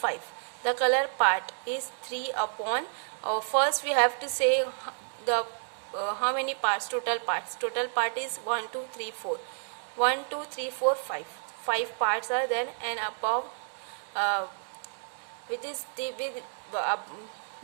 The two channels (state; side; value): silent; left; digital silence